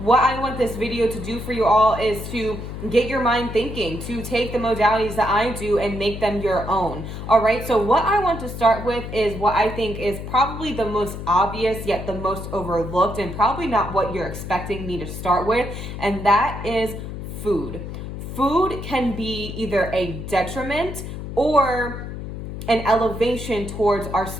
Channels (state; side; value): noise; left; hum, 8 dB below the sound